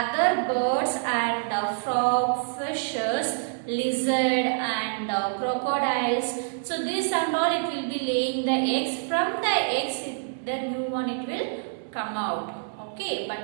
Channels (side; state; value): left; silent; digital silence